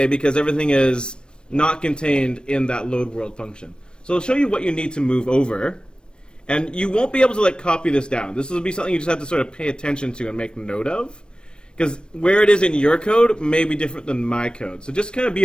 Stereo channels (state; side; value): late; right; 0.053 ms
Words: because everything is not contained in that load world function. So I'll show you what you need to move over. And you won't be able to copy this down. This will be something you just have to sort of pay attention to and make note of. Because where it is in your code may be different than my code. So just kind of be